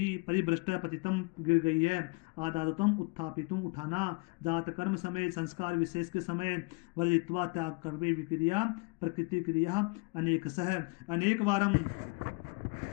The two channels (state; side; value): quieter; right; 29.0 dB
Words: परिभ्रष्ट पतितम गिर गई है आदातम उत्थापितुम उठाना जात कर्म समय संस्कार विशेष के समय वर्जित्वा त्याग कर्मे विक्रिया प्रकृति क्रिया अनेक सह अनेक वारम